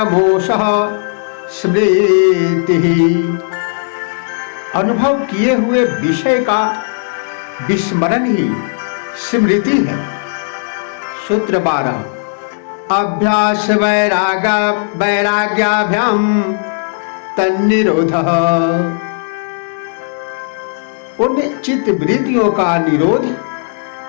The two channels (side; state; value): right; silent; digital silence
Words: स्मृति। अनुभव किए हुए विषय का विस्मरण ही स्मृति है। सूत्र 12, अभ्यास वैराग्याभ्याम तन्निरोधः। उन चित्त वृत्तियों का निरोध